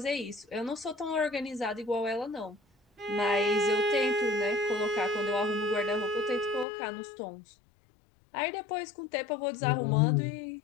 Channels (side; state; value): right; drops out; at 6.7 s